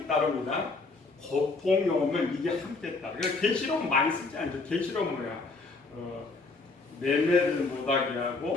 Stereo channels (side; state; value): right; quieter; 3.7 dB